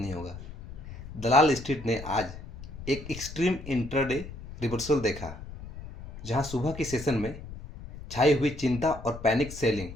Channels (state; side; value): noise; left; rumble, 13 dB below the sound